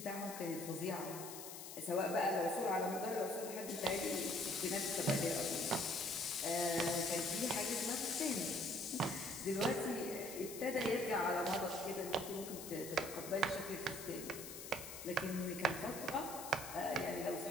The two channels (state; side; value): noise; left; hiss, 10 dB below the sound